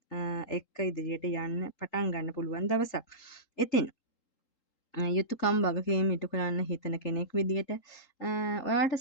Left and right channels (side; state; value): right; late; 3.8 ms